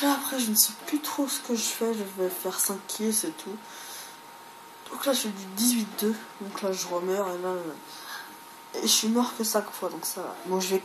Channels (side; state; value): both; identical; correlation 1.00